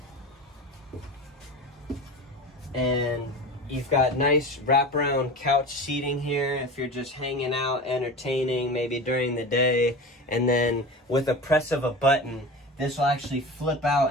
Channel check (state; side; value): normal; both; correlation 0.30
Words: And you've got nice wraparound couch seating here if you're just hanging out, entertaining, maybe during the day. And then with a press of a button, this will actually flip